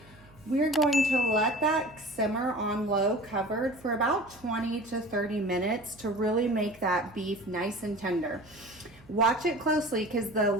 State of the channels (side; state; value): right; noise; hum, 25 dB below the sound